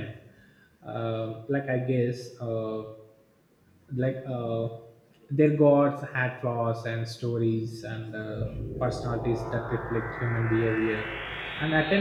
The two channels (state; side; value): identical; both; correlation 1.00